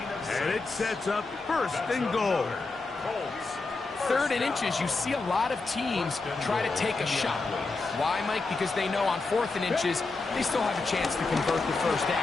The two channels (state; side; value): quieter; right; 3.7 dB